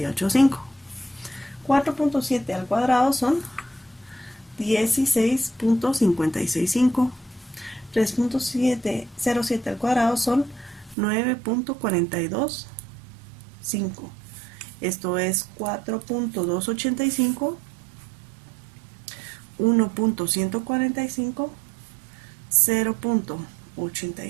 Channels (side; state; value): left; drops out; at 11.0 s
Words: 4.7 al cuadrado son 16.565. 3.07 al cuadrado son 9.425. Esto es 4.285, 1.145,